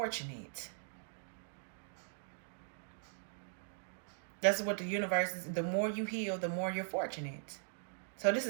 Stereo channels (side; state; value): left; silent; digital silence